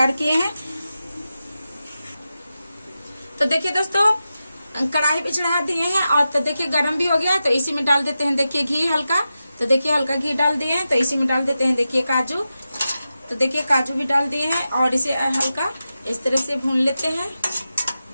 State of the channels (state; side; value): inverted; both; correlation -0.91